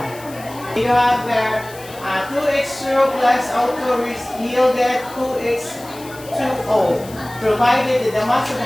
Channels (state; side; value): noise; left; hiss, 19 dB below the sound